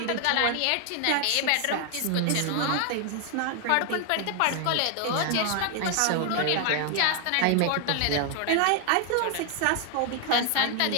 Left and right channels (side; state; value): both; different; correlation 0.00